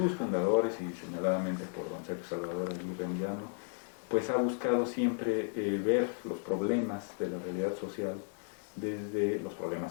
fundadores y señaladamente por don Sergio Salvador Aguirre Anguiano, pues ha buscado siempre ver los problemas de la realidad social desde los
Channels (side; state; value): right; silent; 55 dB below the other